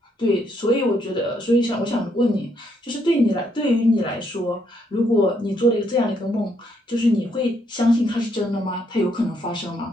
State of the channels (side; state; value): both; normal; correlation 0.73